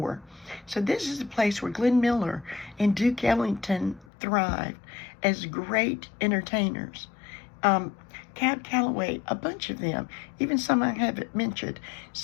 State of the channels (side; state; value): right; drops out; at 4.0 s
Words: So this is a place where Glenn Miller and Duke Ellington thrived as great entertainers. Cab Calloway, a bunch of them, even some I haven't mentioned.